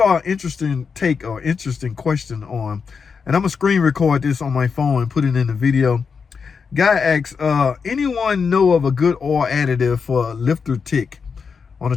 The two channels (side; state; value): right; quieter; 5.7 dB